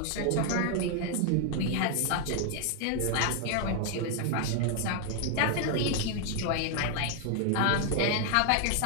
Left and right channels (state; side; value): different; both; correlation 0.00